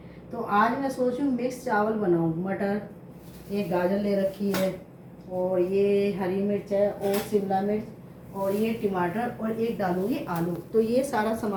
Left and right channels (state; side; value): identical; both; correlation 1.00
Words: तो आज मैं सोच रही हूँ मिक्स चावल बनाऊँ। मटर, एक गाजर ले रखी है, और ये हरी मिर्च है, और शिमला मिर्च, और ये टमाटर, और एक डालूंगी आलू। तो ये सारा